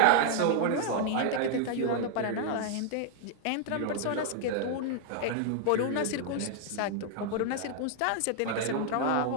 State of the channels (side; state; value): both; different; correlation 0.00